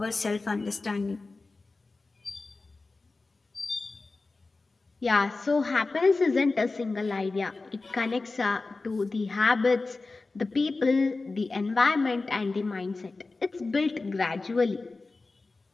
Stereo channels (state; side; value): quieter; right; 3.6 dB